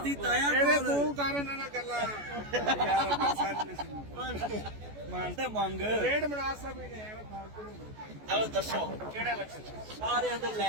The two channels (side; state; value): left; late; 14 ms